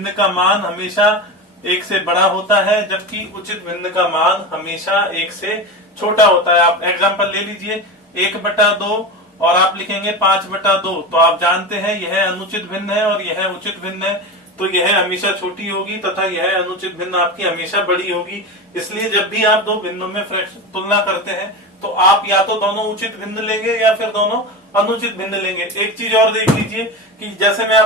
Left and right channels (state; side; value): normal; both; correlation 0.23